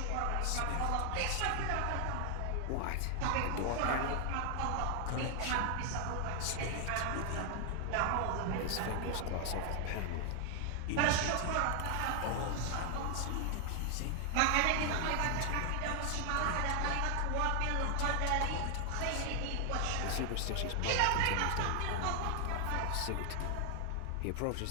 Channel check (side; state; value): both; different; correlation 0.00